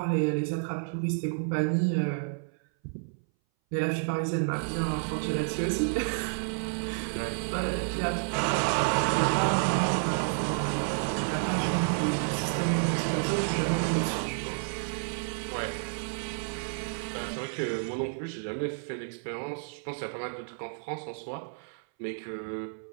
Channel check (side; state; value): left; silent; 58 dB below the other